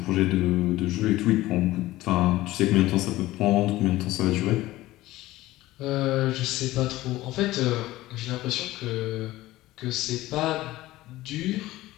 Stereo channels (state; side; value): quieter; right; 17.1 dB